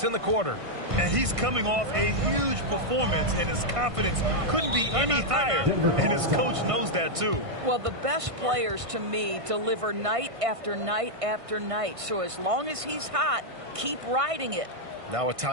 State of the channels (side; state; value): left; late; 1.5 ms